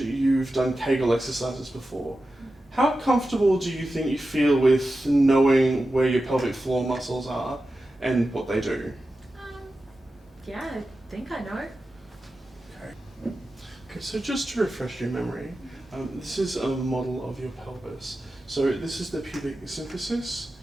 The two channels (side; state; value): both; normal; correlation 0.92